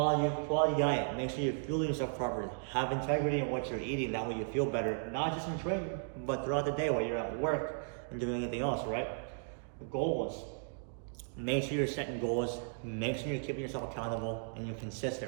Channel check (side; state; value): left; silent; digital silence